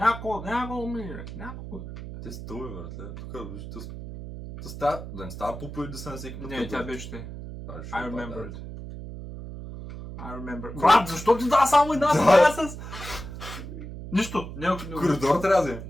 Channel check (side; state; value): right; noise; hum, 10 dB below the sound